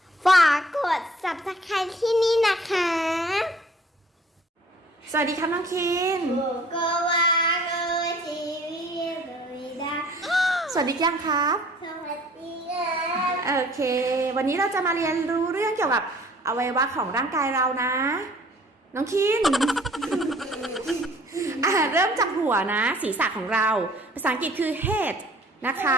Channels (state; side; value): normal; both; correlation 0.54